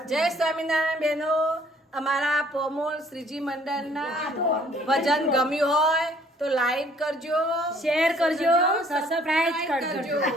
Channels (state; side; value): normal; both; correlation 0.60